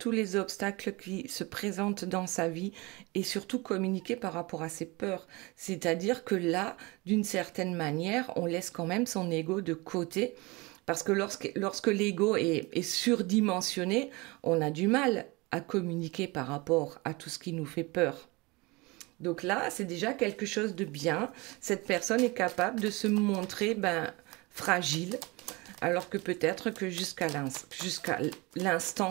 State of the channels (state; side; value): quieter; left; 24.9 dB